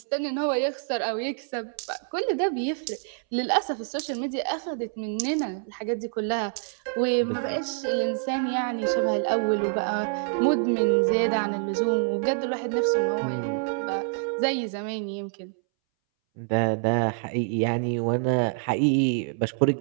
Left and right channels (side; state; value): left; silent; 61 dB below the other